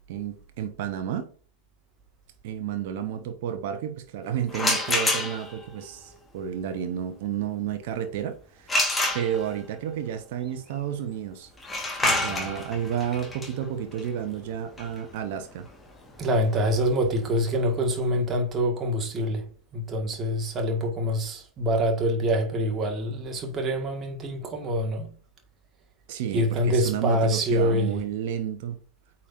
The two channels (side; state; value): both; normal; correlation 0.04